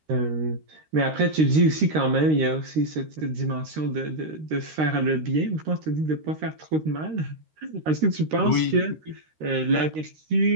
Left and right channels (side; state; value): left; late; 13 ms